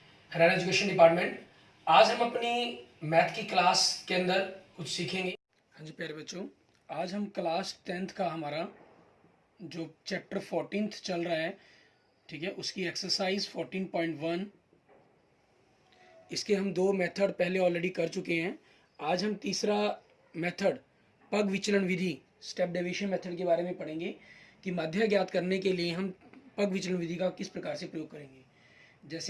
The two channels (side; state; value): both; identical; correlation 1.00